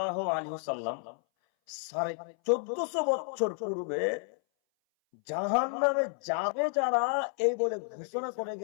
আলাইহি ওয়াসাল্লাম 1450 বছর পূর্বে জাহান্নামে যাবে যারা, এই বলে ঘোষণা করে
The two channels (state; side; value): silent; right; 57 dB below the other